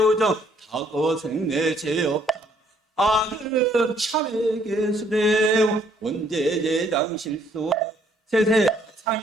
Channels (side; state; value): both; normal; correlation 0.65